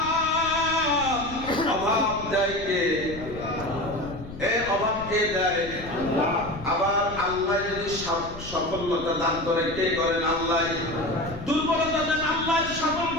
অভাব দেয় কে? অভাব কে দেয়? আবার আল্লাহ যদি সফলতা দান করে কে করেন? আল্লাহ। দুর্বলতা দেন আল্লাহ, সফল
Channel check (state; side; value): noise; left; rumble, 12 dB below the sound